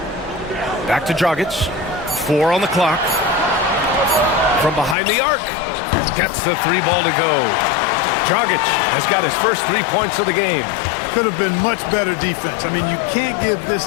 Back to Dragic. 4 on the clock. From behind the arc. Gets the 3 ball to go. Dragic has got his first 3 points of the game. Could have been much better defense. I mean, you can't give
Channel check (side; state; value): right; drops out; at 5.0 s